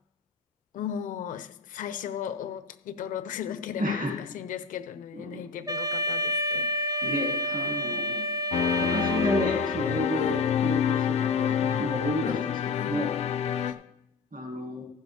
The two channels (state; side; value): quieter; right; 3.9 dB